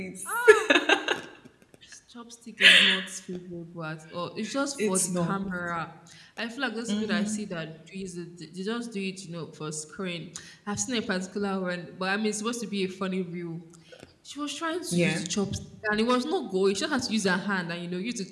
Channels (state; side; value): identical; both; correlation 1.00